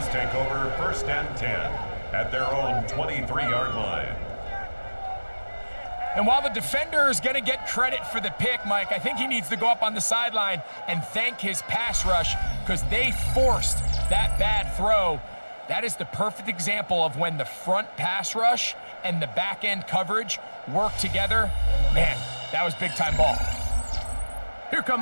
take over 1st and 10 at their own 23-yard line. And while the defender is going to get credit for the pick, Mike, I think he needs to go up on the sideline and thank his pass rush because they forced that bad throw. That is the perfect example of when the front pass rush and the back end coverage work together. Man, that was big-time ball. Here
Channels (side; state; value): both; inverted; correlation -1.00